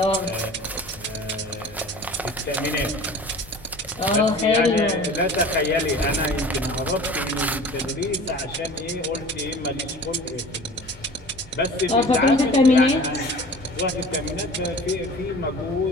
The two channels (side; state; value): both; normal; correlation 0.42